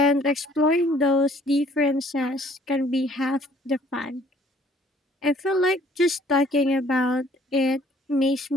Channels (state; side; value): normal; both; correlation 0.58